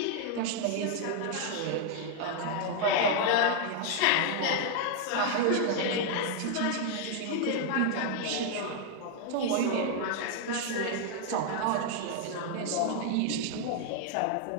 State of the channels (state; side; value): different; both; correlation 0.00